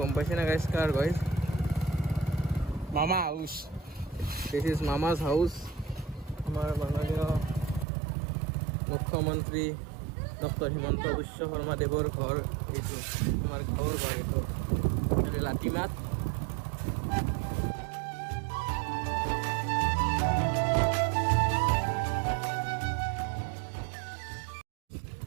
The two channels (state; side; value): drops out; left; at 7.9 s